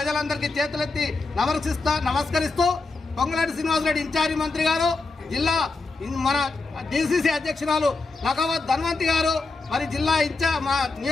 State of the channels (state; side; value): quieter; right; 3.7 dB